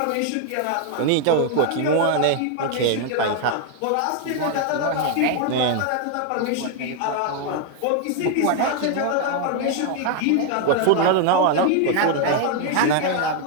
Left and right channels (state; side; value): different; both; correlation 0.01